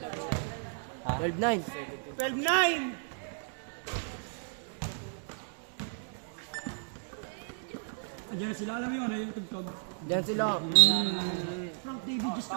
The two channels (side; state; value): left; silent; digital silence